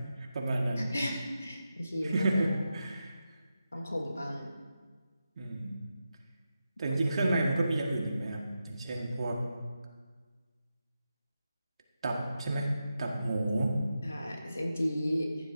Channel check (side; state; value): both; inverted; correlation -0.89